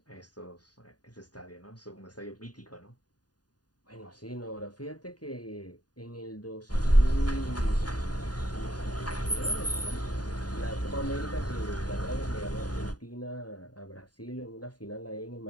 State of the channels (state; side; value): late; right; 0.69 ms